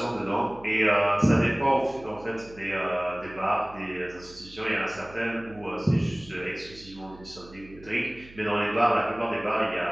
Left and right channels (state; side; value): noise; right; hum, 21 dB below the sound